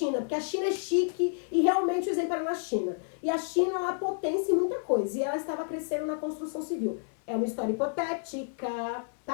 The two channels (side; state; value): right; silent; digital silence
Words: porque a China é chique e realmente o exemplo era na China. E a China é uma potência em muita coisa, e ela estava crescendo na construção civil. É uma história hipotética,